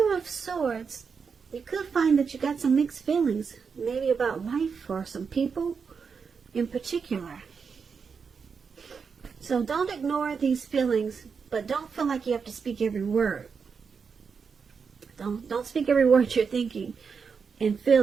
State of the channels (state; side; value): quieter; left; 5.8 dB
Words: of Swords, you could find that you got some mixed feelings, maybe about life or some people in particular. So don't ignore these feelings, but don't feel like you have to speak every word. Don't speak every word you're thinking and